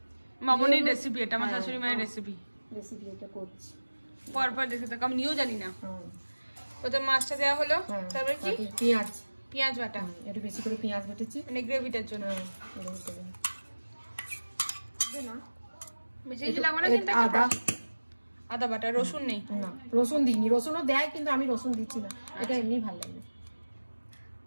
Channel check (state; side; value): inverted; both; correlation -1.00